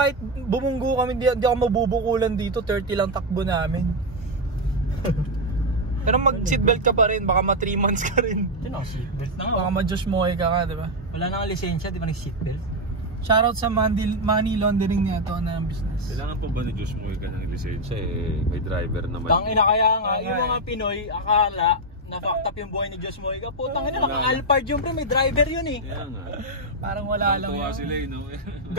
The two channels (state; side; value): normal; both; correlation 0.03